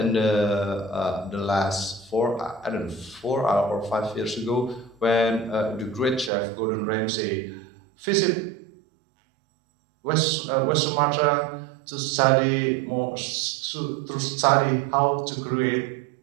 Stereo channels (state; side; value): drops out; left; at 6.3 s